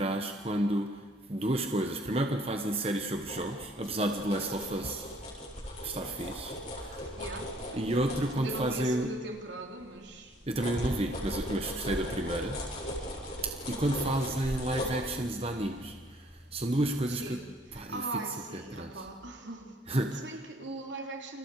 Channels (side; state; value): both; normal; correlation 0.61